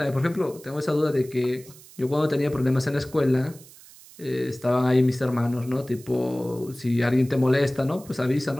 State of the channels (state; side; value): noise; right; hiss, 21 dB below the sound